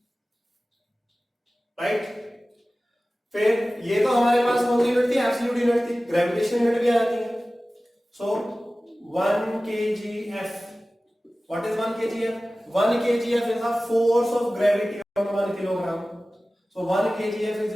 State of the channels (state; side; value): normal; both; correlation 0.97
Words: right? फिर ये तो हमारे पास कौन सी यूनिट थी? एब्सोल्यूट यूनिट थी। ग्रेविटेशनल यूनिट भी आ जाती है। सो 1 kgf, what is 1 kgf? 1 kgf is the force of gravity on 1 kilogram. So 1 kgf is